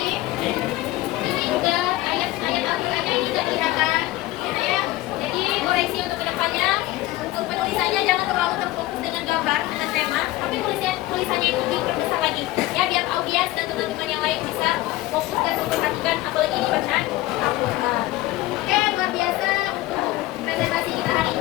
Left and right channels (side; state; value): right; quieter; 17.4 dB